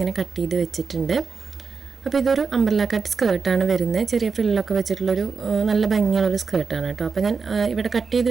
കട്ട് ചെയ്ത് വെച്ചിട്ടുണ്ട്. അപ്പോൾ ഇതൊരു അംബ്രല്ല കട്ട് സ്കേർട്ടാണ് വരുന്നത്. ചെറിയ ഫ്രില്ലൊക്കെ വെച്ചിട്ടുള്ളൊരു നല്ല ഭംഗിയുള്ളൊരു സ്കേർട്ടാണ് കേട്ടോ. അപ്പോൾ ഞാൻ ഇവിടെ കട്ട് ചെയ്ത്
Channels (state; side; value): quieter; left; 5.1 dB